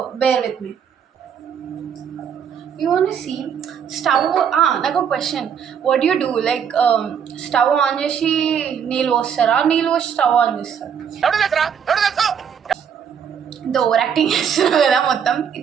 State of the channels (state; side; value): quieter; left; 7.7 dB